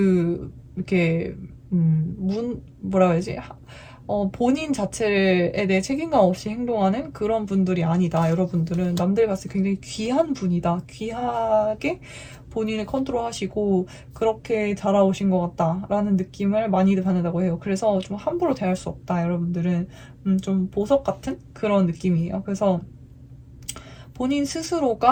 이렇게 뭐라 해야지 본인 자체에 대해 책임감 없이 행동하는 그런 분들이 아니다. 여러분들은 남들 봤을 때 굉장히 귀한 분이다. 귀하게 본인을 컨트롤하시고 그렇게 자라오신 것 같다라는 느낌을 많이들 받는다고 해요. 그래서 좀 함부로 대할 수 없다. 여러분들은 좀 보석 같은 그런 느낌이에요. 그래서 본인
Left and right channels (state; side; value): identical; both; correlation 1.00